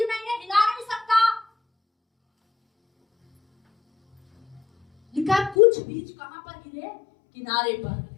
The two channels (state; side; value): drops out; right; at 5.6 s